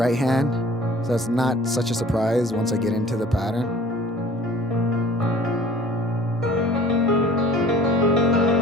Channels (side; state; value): both; normal; correlation 0.48